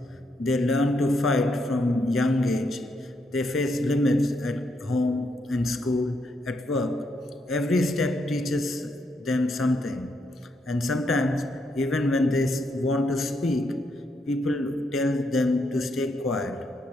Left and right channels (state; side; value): normal; both; correlation 0.78